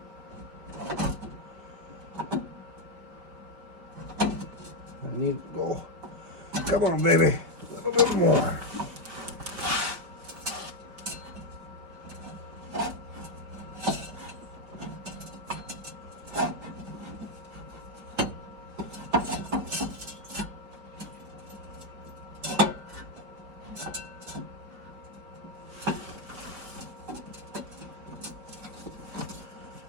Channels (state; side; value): late; left; 5.1 ms